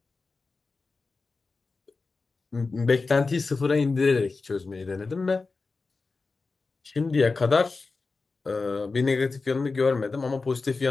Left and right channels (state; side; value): quieter; right; 4.0 dB